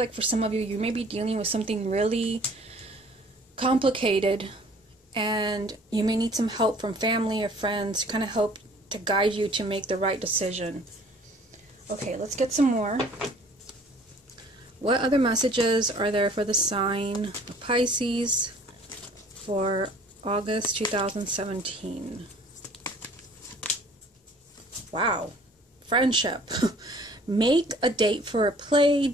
for some of you, you may be dealing with something really complicated, and you may need some help from family or friends to kind of help to guide you to make the right decision. Okay, let's get some more. What other messages are there for the sign of Pisces for August 2017? Wow. Friendship. Make a date for a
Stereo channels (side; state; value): both; normal; correlation 0.53